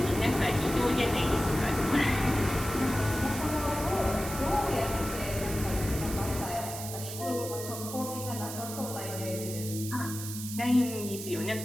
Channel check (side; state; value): right; noise; hiss, 9 dB below the sound